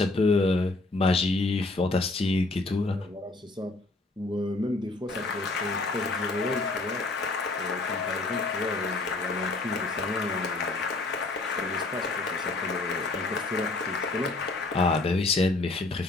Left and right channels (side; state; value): right; quieter; 3.2 dB